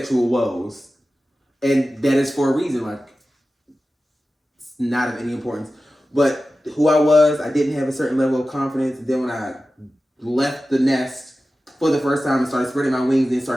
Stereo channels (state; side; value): normal; both; correlation 0.94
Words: woes, and that is for a reason. Like, it's not of any importance, but who I was, I didn't have a certain level of confidence. Then when I left the nest for the first time and started spreading my wings and